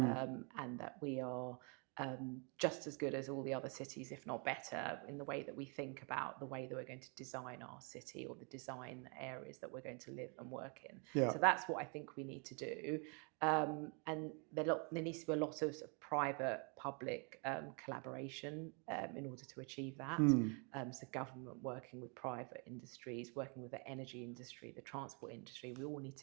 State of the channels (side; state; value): left; quieter; 35.8 dB